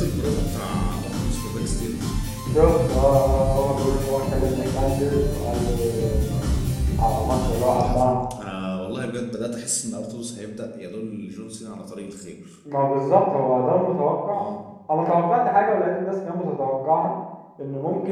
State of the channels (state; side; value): identical; both; correlation 1.00